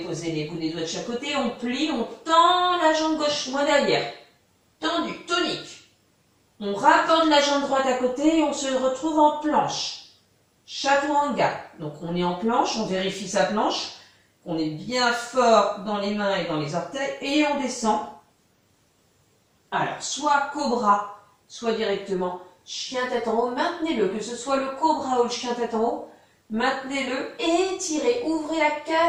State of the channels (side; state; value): both; identical; correlation 1.00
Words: les bouts des doigts de chaque côté. On plie, on tend la jambe gauche, moins derrière. Tendu, tonique. On rapporte la jambe droite à côté et on se retrouve en planche. Chaturanga. Donc on est en planche, on vérifie sa planche. On est bien fort dans les mains et dans les orteils. Et on descend. Alors, soit cobra, soit directement chien tête en haut. Maintenez-le, que ce soit le cobra ou le chien tête en haut. Maintenez-le, étirez, ouvrez la